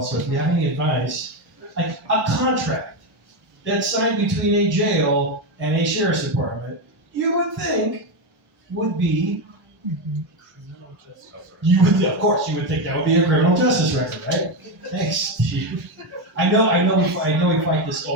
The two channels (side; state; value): left; late; 1.1 ms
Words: So if you have any advice, like a contract that's signed between a jail and a sheriff's department you would think would be, Criminal justice. of course, you would think that would be a criminal justice record, right? Thanks, Steve. I know we fight this